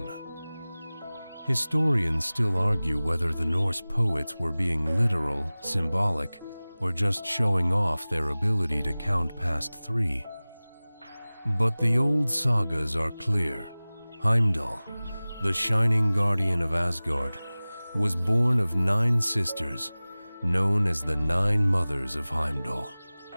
Historians still argue whether the Norse poets were being literal, symbolic, or just showing off their ability to count past 3. But the old sagas are clear. Heimdall, the shining guardian of Asgard, was born of 9 sisters, known as the 9 mothers of Heimdall.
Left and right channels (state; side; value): inverted; both; correlation -0.99